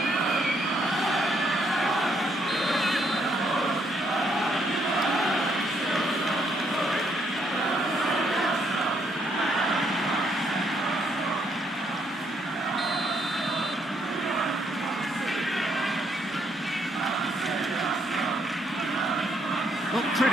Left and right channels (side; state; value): both; normal; correlation 0.72